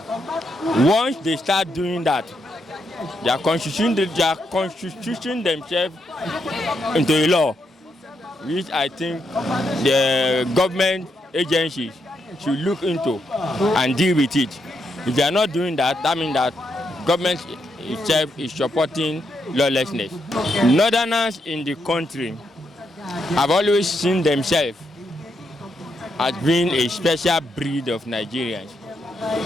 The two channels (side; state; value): both; normal; correlation 0.80